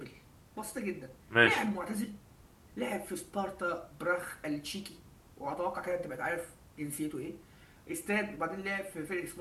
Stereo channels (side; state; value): both; identical; correlation 1.00